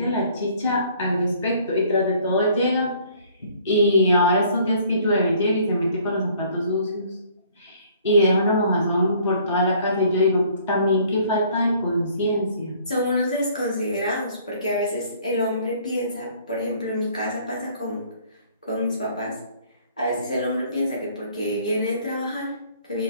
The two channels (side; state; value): both; inverted; correlation -0.58